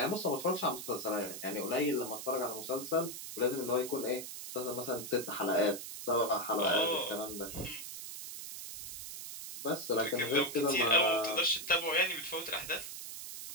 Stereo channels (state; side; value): noise; right; hiss, 9 dB below the sound